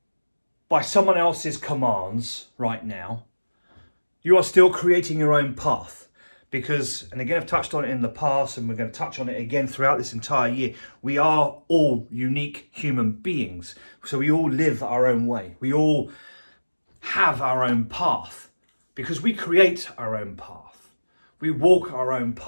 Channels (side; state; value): both; inverted; correlation -1.00